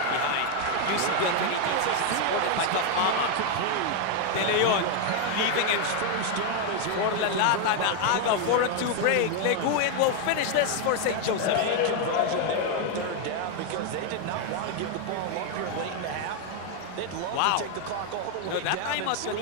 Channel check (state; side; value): different; both; correlation 0.01